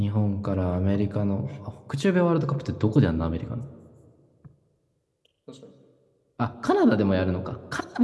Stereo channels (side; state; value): both; identical; correlation 1.00